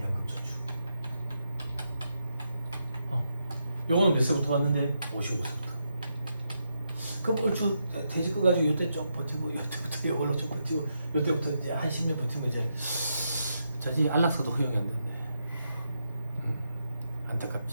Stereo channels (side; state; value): both; inverted; correlation -0.83